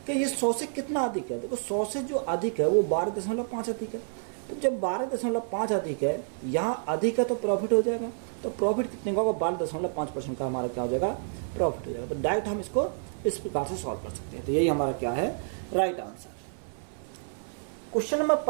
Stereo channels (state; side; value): silent; left; 57 dB below the other